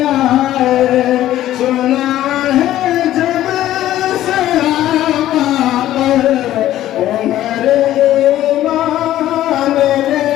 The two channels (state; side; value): quieter; right; 13.4 dB